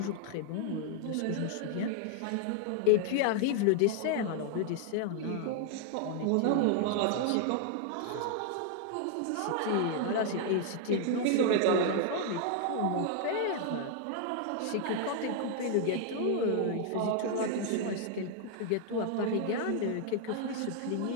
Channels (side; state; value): both; different; correlation 0.00